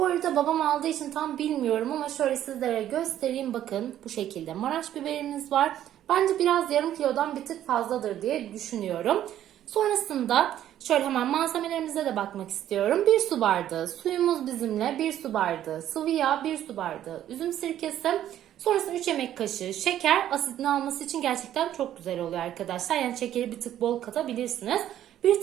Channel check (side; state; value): left; quieter; 11.7 dB